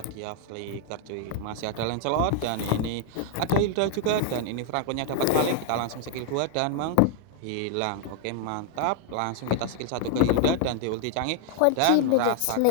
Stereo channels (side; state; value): both; different; correlation 0.00